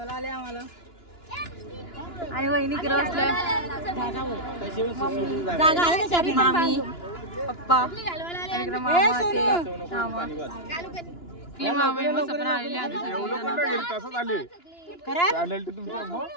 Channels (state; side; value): late; right; 2.9 ms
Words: आले आम्हाला. आणि वहिनी किती बसल्या. मामी पप्पा आणि इकडे मामा ते मामा ती मामी मस्त पण आलेली.